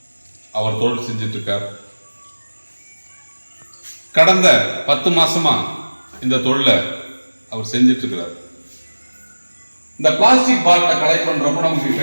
அவர் தொழில் செஞ்சிட்ருக்கார். கடந்த 10 மாசமா இந்த தொழிலை அவர் செஞ்சிட்ருக்கிறார். இந்த பிளாஸ்டிக் பாட்டிலை கலெக்ட் பண்றப்ப நமக்கு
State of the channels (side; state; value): both; inverted; correlation -1.00